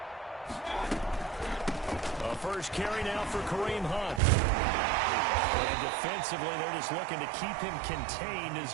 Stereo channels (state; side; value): drops out; left; at 4.2 s